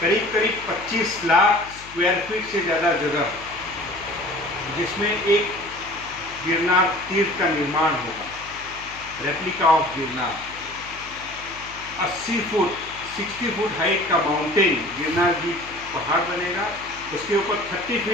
25 लाख स्क्वायर फीट से ज़्यादा जगह, जिसमें एक गिरनार तीर्थ का निर्माण होगा, replica of Girnar. 60 foot height का माउंटेन गिरनार जी पहाड़ बनेगा, उसके ऊपर 30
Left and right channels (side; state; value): left; noise; hum, 19 dB below the sound